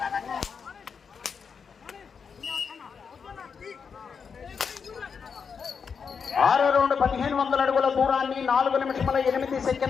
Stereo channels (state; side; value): quieter; right; 6.1 dB